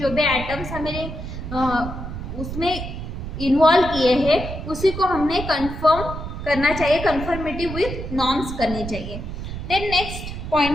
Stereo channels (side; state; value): right; noise; rumble, 7 dB below the sound